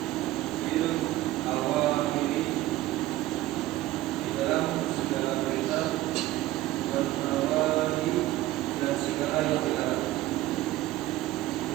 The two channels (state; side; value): quieter; left; 16.1 dB